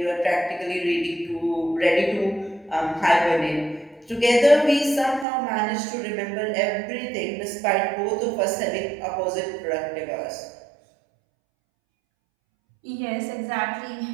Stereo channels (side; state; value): left; drops out; at 5.2 s